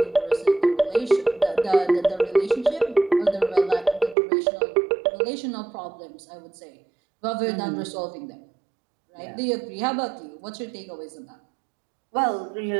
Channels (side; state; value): left; drops out; at 4.2 s